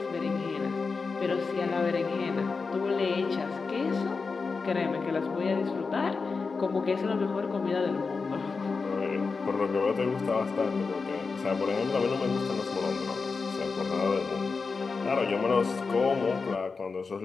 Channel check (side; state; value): right; quieter; 4.6 dB